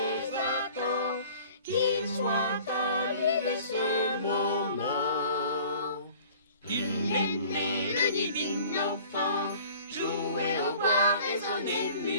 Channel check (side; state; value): both; inverted; correlation -0.48